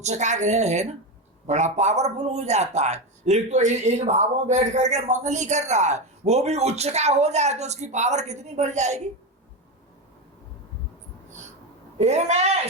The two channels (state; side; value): normal; both; correlation 0.14